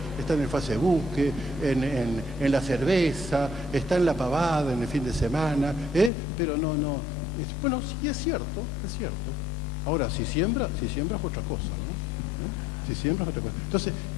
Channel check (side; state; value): right; drops out; at 6.1 s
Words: está en el Facebook, en la cerveza, está en la pavada en el fin de semana, pero no. Bueno, sí, es cierto. Ahora, si siembra es otra cosa, ¿no? Si siembra es otra cosa. Entonces,